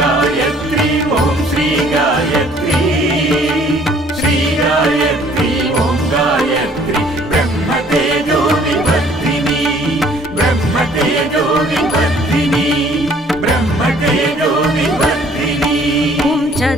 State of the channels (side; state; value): both; normal; correlation 0.58